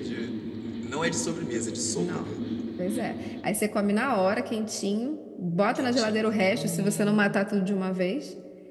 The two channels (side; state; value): both; identical; correlation 1.00